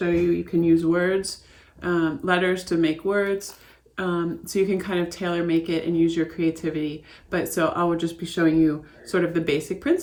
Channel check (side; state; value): both; identical; correlation 1.00